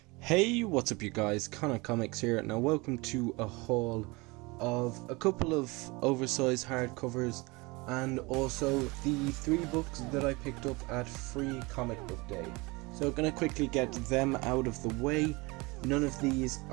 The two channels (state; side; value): quieter; left; 25.1 dB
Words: Hey, what's up you guys, Connor Comics here. Now welcome to a haul of a couple of oversized hardcovers and also the 3 books that I picked up at Free Comic Book Day. So I'm going to quickly get them out of the way. None of these